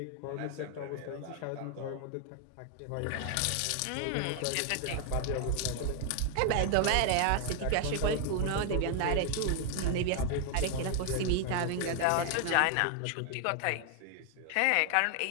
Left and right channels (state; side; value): different; both; correlation 0.00